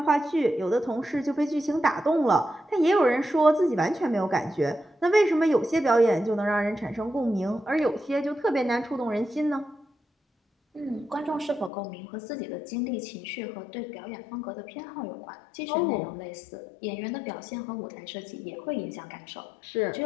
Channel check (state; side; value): drops out; right; at 11.7 s